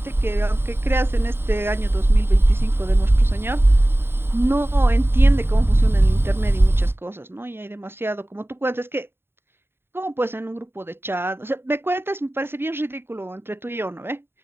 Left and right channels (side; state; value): left; late; 0.11 ms